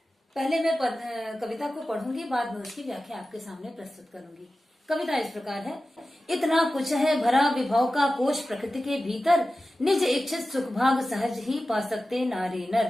पहले मैं कविता को पढ़ूंगी, बाद में उसकी व्याख्या आपके सामने प्रस्तुत करूंगी। कविता इस प्रकार है। इतना कुछ है भरा विभव का कोश प्रकृति के भीतर, निज इच्छित सुख भाग सहज ही पा सकते नारी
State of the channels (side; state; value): both; normal; correlation 0.94